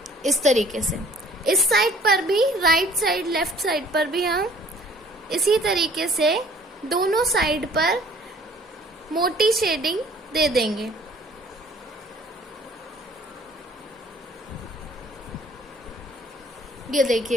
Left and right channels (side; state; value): both; normal; correlation 0.55